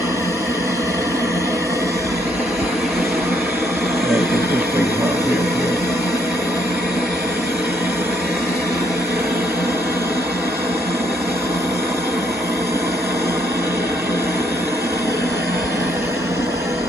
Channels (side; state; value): both; normal; correlation 0.71